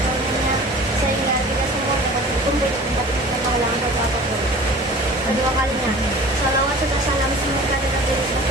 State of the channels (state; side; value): normal; both; correlation 0.43